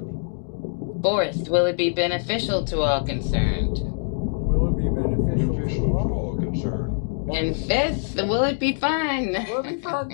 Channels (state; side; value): silent; right; 63 dB below the other